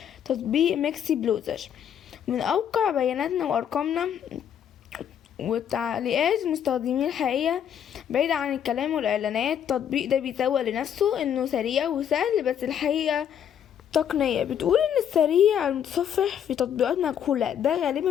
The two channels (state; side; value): quieter; right; 9.1 dB